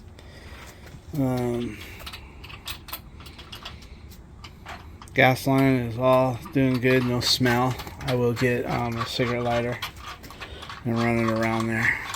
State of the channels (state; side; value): identical; both; correlation 1.00